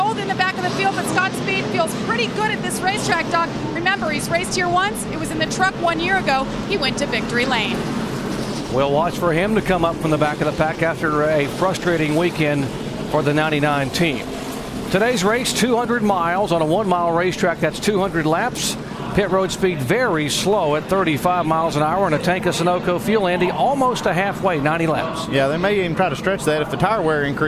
in the back of the field, but Scott Speed feels pretty good at this racetrack, Doc. Remember, he's raced here once. It was in the truck 1 year ago. He went to victory lane. We'll watch for him to come up from the back of the pack after a frustrating weekend for the 99 team. Today's race, 200 miles on a 1-mile racetrack. That's 200 laps. Pit road speed very slow at 35 miles an hour in a tank of Sunoco fuel. Andy, almost a halfway, 90 laps. Yeah, they may even try to stretch that if the tire wear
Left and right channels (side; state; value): both; identical; correlation 1.00